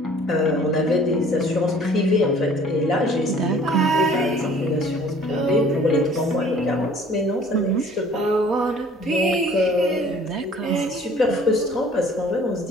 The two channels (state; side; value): normal; both; correlation 0.52